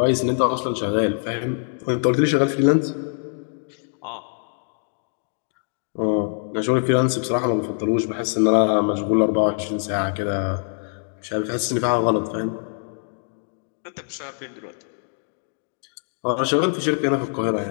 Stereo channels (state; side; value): silent; right; digital silence